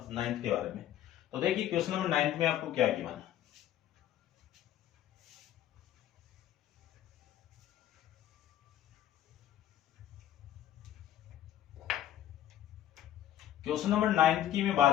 9 के बारे में। तो देखिए क्वेश्चन नंबर 9 में आपको क्या गिवन है। क्वेश्चन नंबर 9 की मैं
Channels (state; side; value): quieter; right; 11.8 dB